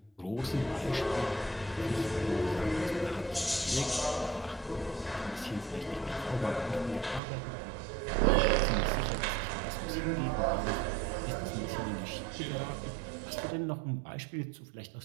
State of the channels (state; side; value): drops out; left; at 7.2 s